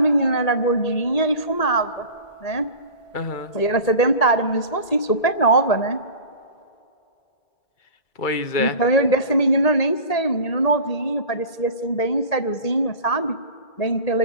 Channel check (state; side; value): late; right; 1.8 ms